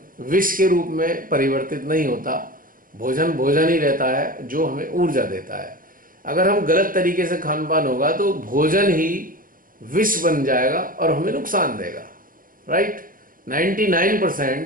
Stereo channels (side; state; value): left; late; 0.40 ms